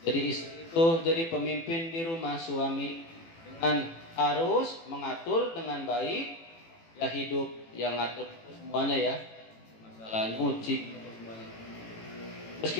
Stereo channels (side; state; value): right; late; 18 ms